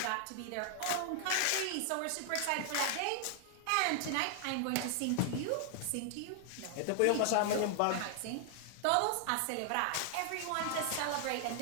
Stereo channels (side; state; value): both; different; correlation 0.00